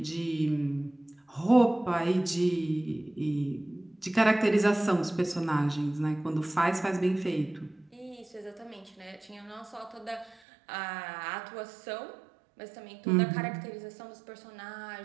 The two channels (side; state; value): left; drops out; at 10.4 s